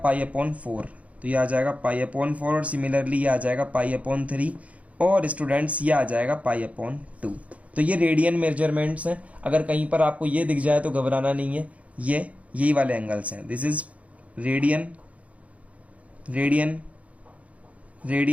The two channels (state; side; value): late; left; 0.066 ms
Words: अपॉन 4। तो ये आ जाएगा पाई अपॉन 4, और सिमिलरली ये आ जाएगा पाई अपॉन 3, और स्टूडेंट्स ये आ जाएगा पाई अपॉन 2। तो ये रेडियन मेजरमेंट्स हैं। अगर कहीं पर आपको ये दिख जाए तो घबराना नहीं है, ये यही वाले एंगल्स हैं। This is radian, radian,